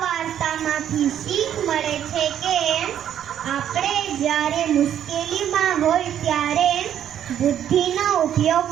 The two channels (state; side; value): quieter; left; 10.1 dB